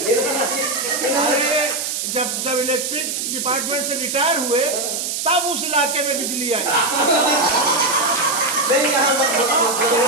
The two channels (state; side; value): noise; right; hiss, 2 dB below the sound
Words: जब इलेक्ट्रिक डिपार्टमेंट से रिटायर हुए तब उस इलाके में बिजली आई। नहीं यहाँ